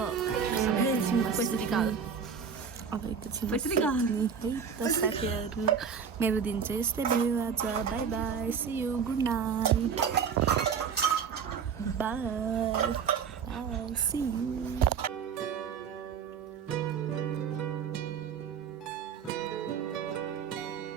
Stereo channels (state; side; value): quieter; left; 6.7 dB